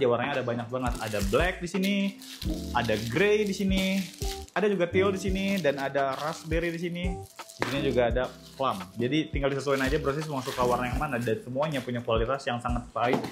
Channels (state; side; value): identical; both; correlation 1.00